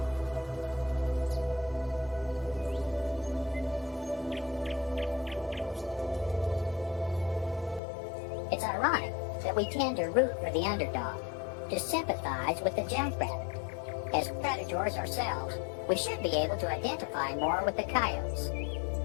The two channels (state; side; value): drops out; right; at 7.8 s